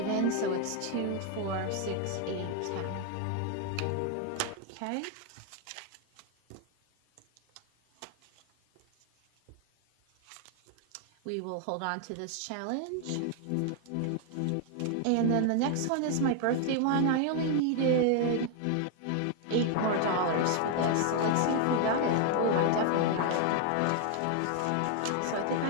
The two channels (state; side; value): different; both; correlation 0.00